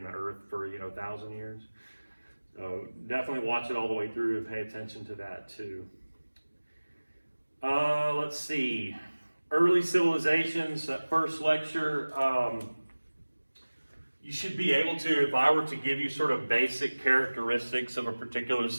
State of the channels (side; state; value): both; inverted; correlation -1.00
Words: the earth for 1,000 years. So definitely watch it all the way through and pay attention to that too. Let's see, early civilizations, that first lecture, you should be able to, if I were to give you sort of basic characteristics of a particular